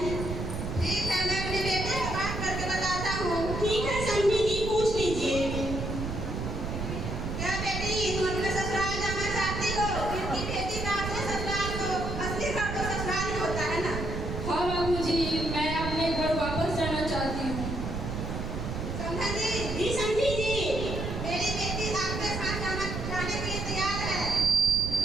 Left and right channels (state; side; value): noise; right; rumble, 4 dB below the sound